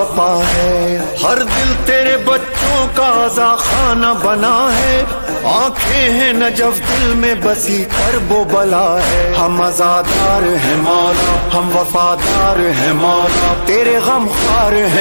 ہے ہر دل تیرے بچوں کا عزا خانہ بنا ہے آنکھیں ہیں نجف دل میں بسی کرب و بلا ہے ہم عزادار ہیں مولا ہم وفادار ہیں مولا تیرے غم خوار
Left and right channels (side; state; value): both; inverted; correlation -1.00